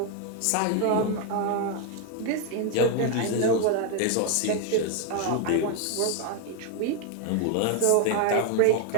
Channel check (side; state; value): both; different; correlation 0.00